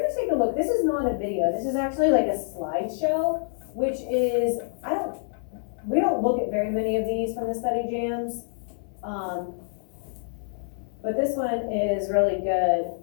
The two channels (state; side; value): silent; right; 61 dB below the other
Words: take a look. This is not a video. This is actually like a slideshow, which is, we don't look at very many of these from the study jams. But this one is really good.